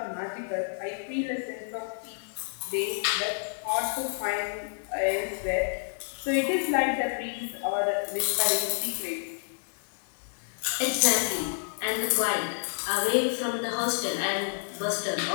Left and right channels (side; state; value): right; silent; digital silence